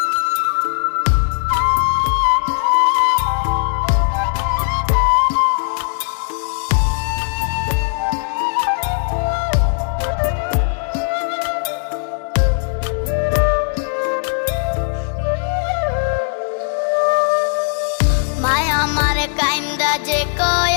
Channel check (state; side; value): silent; right; digital silence